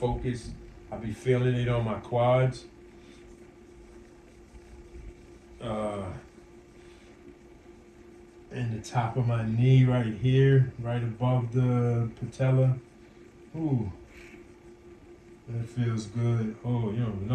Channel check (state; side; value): identical; both; correlation 1.00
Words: I be feeling it on my quads. And the top of my knee right here, right above the patella. Ooh, that feels good. Oh, you don't